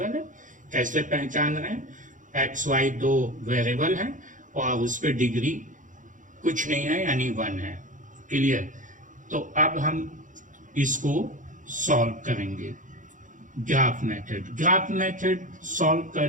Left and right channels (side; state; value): left; late; 0.37 ms